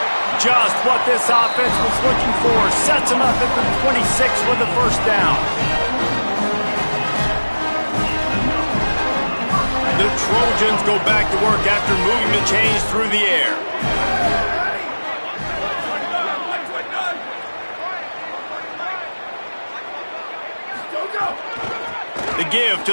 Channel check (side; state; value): both; inverted; correlation -1.00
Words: Just what this offense was looking for. Sets him up at the 26 for the first down. The Trojans go back to work after moving the chains through the air. The give